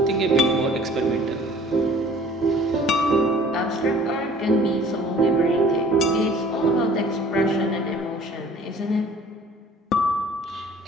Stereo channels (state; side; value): normal; both; correlation 0.50